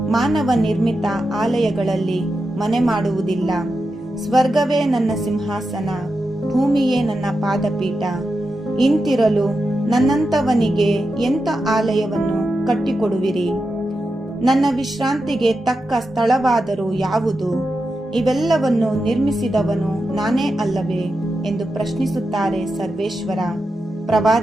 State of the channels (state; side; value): normal; both; correlation 0.89